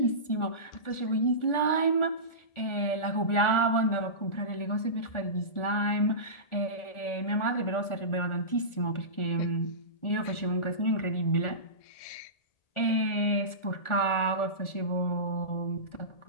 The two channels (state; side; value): late; right; 1.4 ms